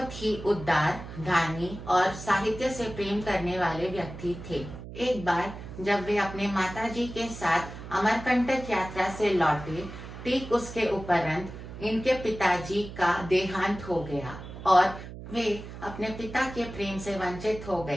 ही उदार, दानी और साहित्य से प्रेम करने वाले व्यक्ति थे। एक बार जब वे अपने माताजी के साथ अमरकंटक यात्रा से लौटे, ठीक उसके उपरांत इनके पिताजी का देहांत हो गया और वे अपने पिता के प्रेम से वंचित हो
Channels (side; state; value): right; noise; hum, 12 dB below the sound